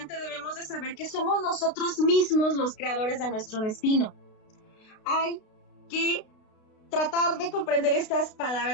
debemos de saber que somos nosotros mismos los creadores de nuestro destino. Hay que tratar de comprender estas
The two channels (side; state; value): right; late; 32 ms